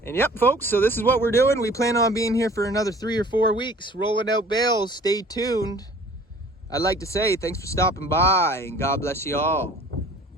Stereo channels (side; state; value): both; normal; correlation 0.50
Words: And yep, folks, so this is what we're doing. We plan on being here for another 3 or 4 weeks, rolling out bales. Stay tuned. I'd like to say thanks for stopping by, and God bless you all.